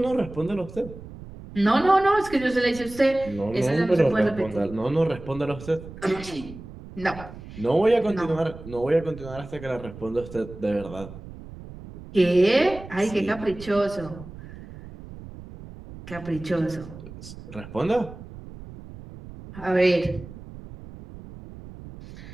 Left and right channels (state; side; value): noise; right; rumble, 15 dB below the sound